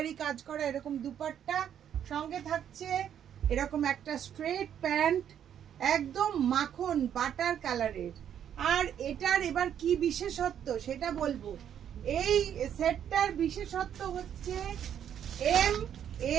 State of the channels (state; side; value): quieter; left; 9.4 dB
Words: কাজ করা এরকম দুপাট্টা। সঙ্গে থাকছে এরকম একটা স্ট্রেট প্যান্ট, একদম মাখন বাটার কালারের। আর এটার এবার কি বিশেষত্ব সেটা বলবো। এই সেটটার বিশেষত্ব হচ্ছে এম,